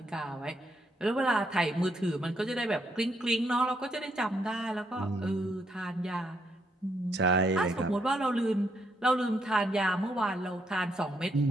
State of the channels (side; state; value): both; normal; correlation 0.75